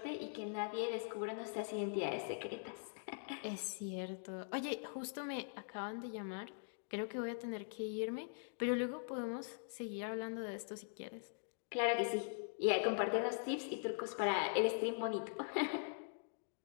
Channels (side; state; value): right; silent; digital silence